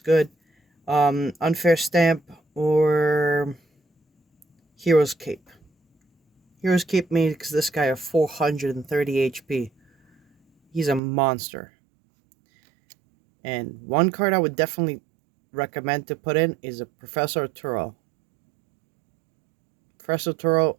Unfair Stamp or Hero's Cape. Hero's Cape makes this guy a 430 HP. He's a monster. And 1 card I would definitely recommend to put in is a Professor Turo. Professor Turo,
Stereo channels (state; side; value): drops out; left; at 11.0 s